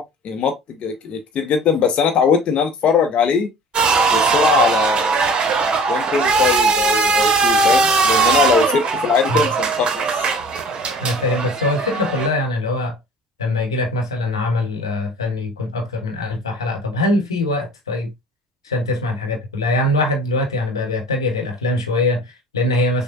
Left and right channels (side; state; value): both; normal; correlation 0.44